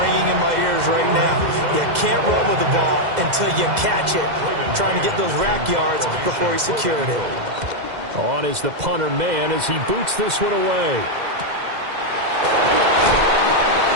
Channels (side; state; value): left; late; 2.0 ms